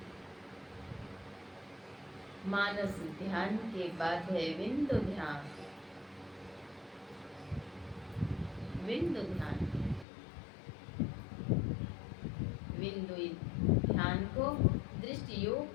मानस ध्यान के बाद है बिंदु ध्यान। बिंदु ध्यान, बिंदु ध्यान को दृष्टि योग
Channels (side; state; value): right; drops out; at 10.1 s